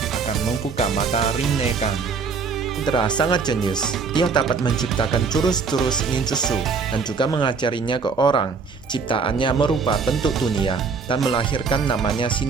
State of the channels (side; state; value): left; quieter; 5.0 dB